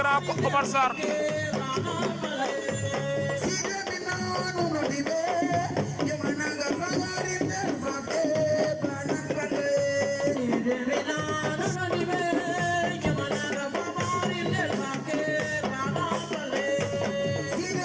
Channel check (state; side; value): identical; both; correlation 1.00